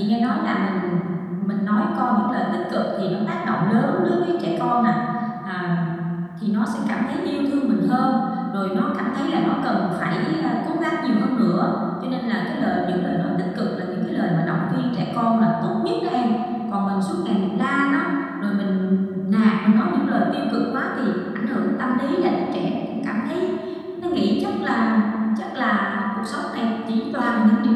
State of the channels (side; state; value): both; identical; correlation 1.00